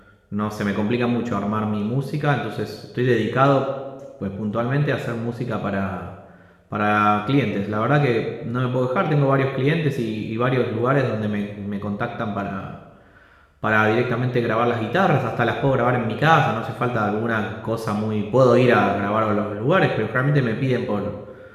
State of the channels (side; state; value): both; identical; correlation 1.00